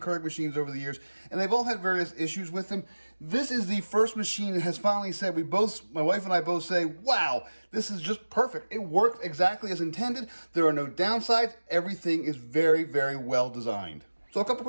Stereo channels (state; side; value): inverted; both; correlation -1.00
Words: Keurig machines over the years, and they've all had various issues with them. This is the first machine that has finally said, my wife and I both say, wow, this is just perfect. It worked exactly as intended. There are no downsides. Everything is very, very well designed. So a couple